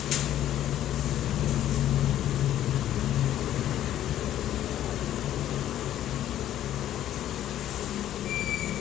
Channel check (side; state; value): right; quieter; 12.0 dB